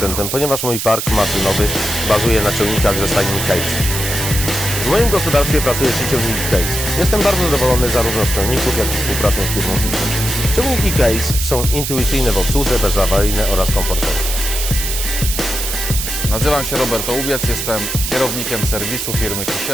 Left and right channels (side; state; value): right; noise; hiss, 3 dB below the sound